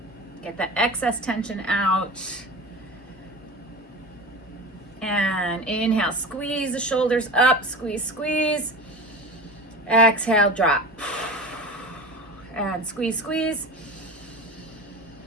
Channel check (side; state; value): both; normal; correlation 0.31